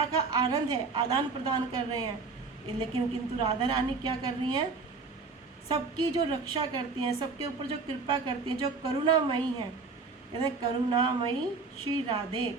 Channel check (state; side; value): quieter; left; 4.4 dB